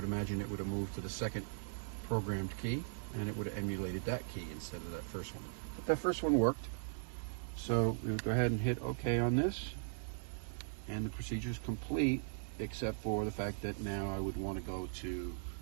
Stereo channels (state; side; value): silent; left; 52 dB below the other